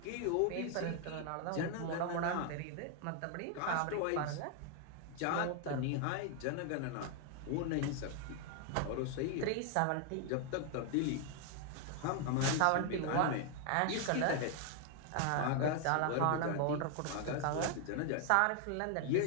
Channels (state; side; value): different; both; correlation 0.00